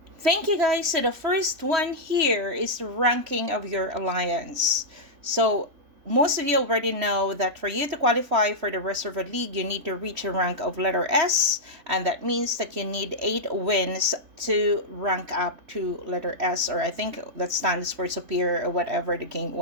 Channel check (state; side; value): late; left; 3.2 ms